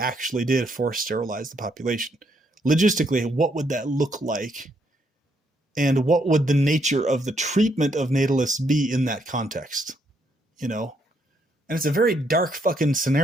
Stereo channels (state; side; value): normal; both; correlation 0.74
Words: did force sterilize the population? Logistically, what would that look like? And what would the nature of the treatment of natalists be in that context? And it's a very dark fucking